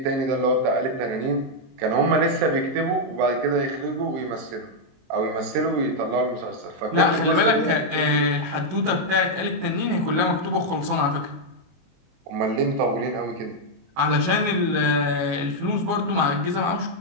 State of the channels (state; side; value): late; left; 22 ms